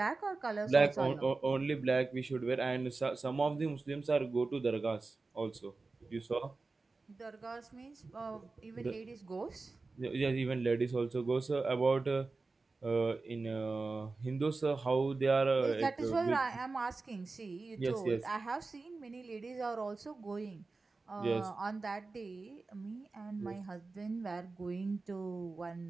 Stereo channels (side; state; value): left; quieter; 3.8 dB